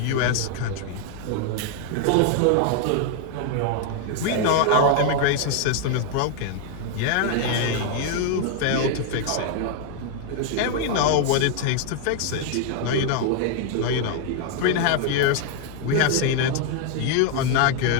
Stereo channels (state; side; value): different; both; correlation 0.00